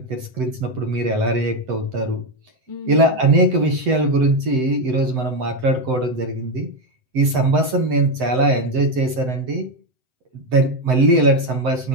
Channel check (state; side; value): late; left; 7.8 ms